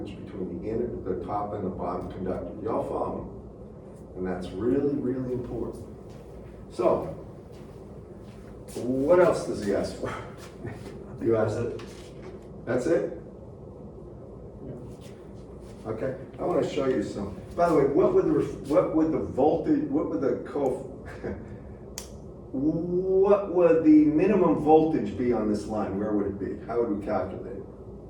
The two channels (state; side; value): identical; both; correlation 1.00